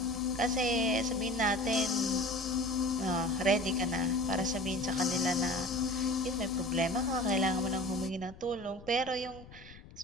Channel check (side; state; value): left; noise; rumble, 19 dB below the sound